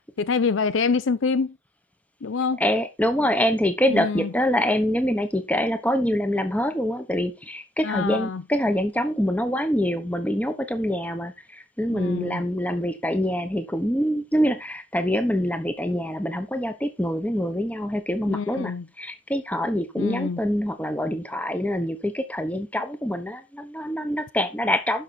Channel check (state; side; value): normal; both; correlation 0.73